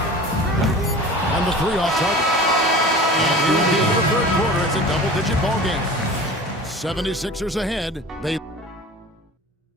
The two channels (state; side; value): normal; both; correlation 0.39